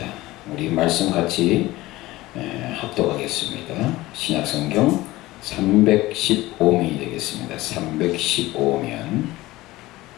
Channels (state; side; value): quieter; right; 18.4 dB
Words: 우리 말씀 같이 합독하겠습니다. 신약성경 315면이 되겠습니다. 315면.